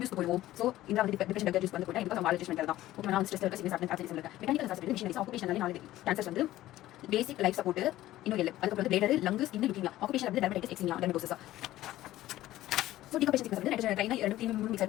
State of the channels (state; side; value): quieter; right; 15.0 dB